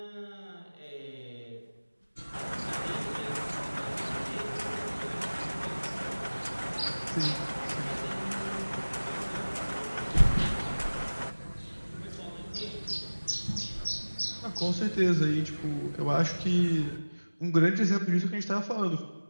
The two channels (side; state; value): both; inverted; correlation -1.00